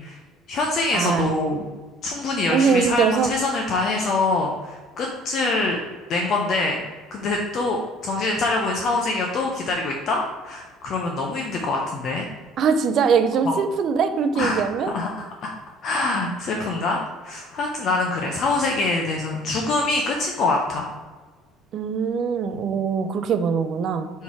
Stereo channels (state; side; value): normal; both; correlation 0.53